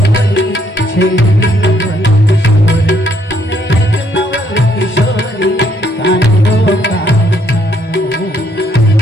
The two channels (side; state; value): both; normal; correlation 0.70